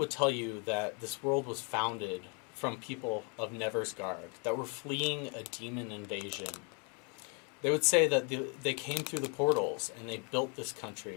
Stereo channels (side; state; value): right; quieter; 36.2 dB